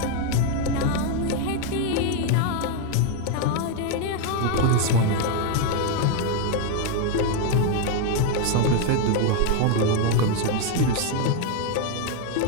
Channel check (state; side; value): different; both; correlation 0.01